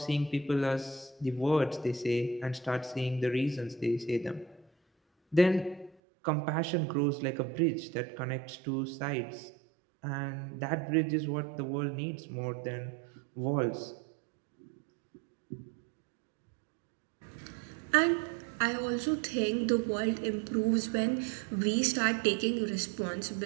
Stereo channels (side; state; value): left; drops out; at 6.0 s